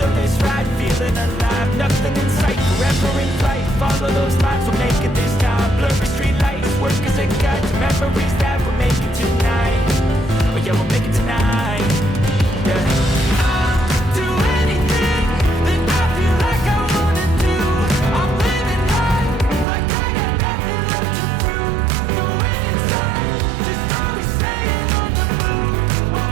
ride, feeling alive. Nothing in sight, forever in flight. Follow those lines, we'll make it this time. Blurry street lights, work as a guide to memories that we're making tonight. Oh yeah, we'll make it tonight. Yeah. I'll do anything that I feel like I wanna do. I'm living life like I got nothing left to prove. No end in sight, just always staying on the move.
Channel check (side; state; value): left; drops out; at 19.7 s